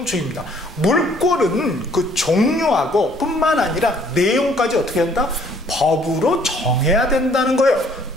물권은 그 종류하고 뿐만 아니라 내용까지 어떻게 한다? 법으로 정해야 된다는 거예요.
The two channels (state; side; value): normal; both; correlation 0.61